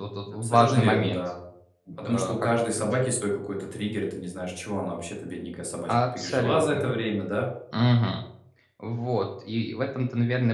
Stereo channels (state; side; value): identical; both; correlation 1.00